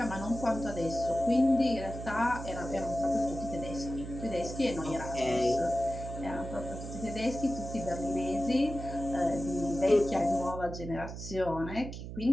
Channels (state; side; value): noise; right; hum, 9 dB below the sound